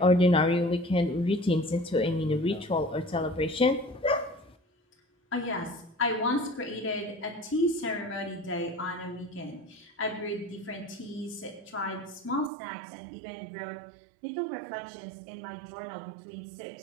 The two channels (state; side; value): drops out; left; at 12.5 s